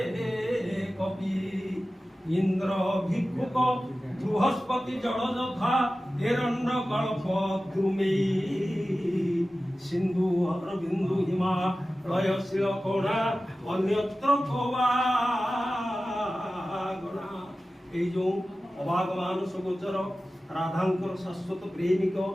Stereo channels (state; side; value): normal; both; correlation 0.95